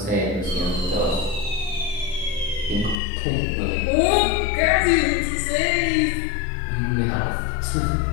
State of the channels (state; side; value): drops out; right; at 3.0 s